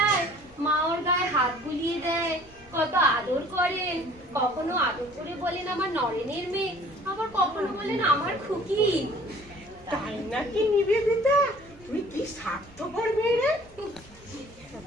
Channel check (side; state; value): both; normal; correlation 0.51